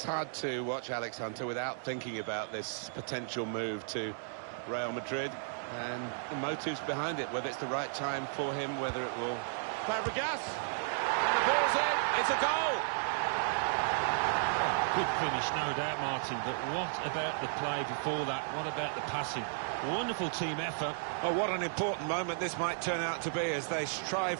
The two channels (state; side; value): silent; left; digital silence